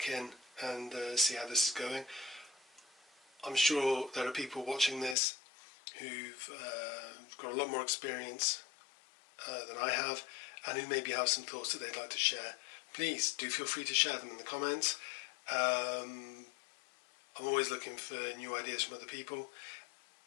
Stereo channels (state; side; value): drops out; right; at 5.2 s